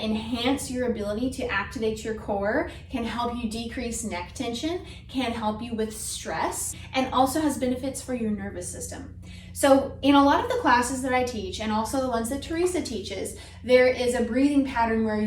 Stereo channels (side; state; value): both; identical; correlation 1.00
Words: enhance your ability to activate your core, can help you decrease neck tension, can help you with stress, and also has benefits for your nervous system. So in a lot of the classes that I teach, and also the ones that Teresa teaches, there is a breathing pattern where